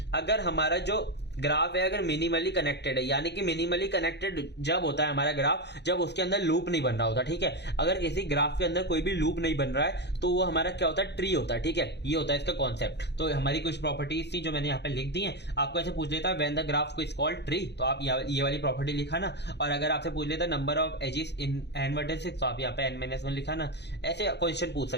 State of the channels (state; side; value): late; right; 0.50 ms